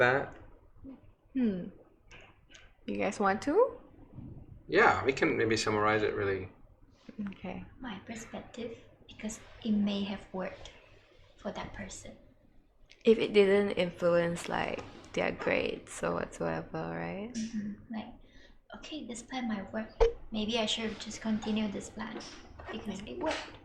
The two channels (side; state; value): both; identical; correlation 1.00